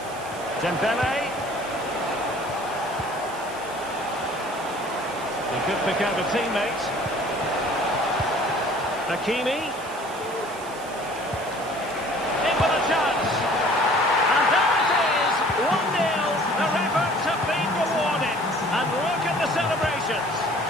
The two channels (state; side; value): noise; right; hiss, 17 dB below the sound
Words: Dembele. He could pick out a teammate. Hakimi. In with a chance. And there it is. 1-0. Their efforts have been rewarded. And look at the celebrations.